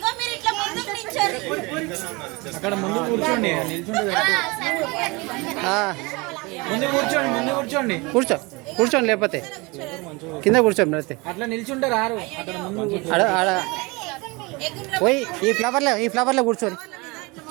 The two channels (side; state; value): left; quieter; 25.8 dB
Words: అక్కడ ముందు కూర్చోండి నిల్చుంటే ముందు కూర్చోండి కూర్చోండి లేకపోతే కింద కూర్చోండి అయితే అట్లా నిల్చుంటే రారు అక్కడ ముందు పోయి ఈ ఫ్లవర్లో కూర్చోండి